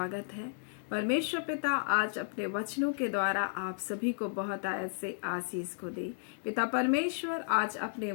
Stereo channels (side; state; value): right; silent; digital silence